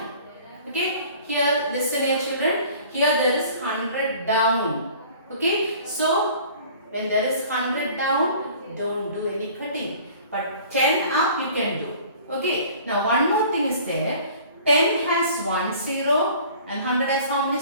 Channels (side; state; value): both; inverted; correlation -0.48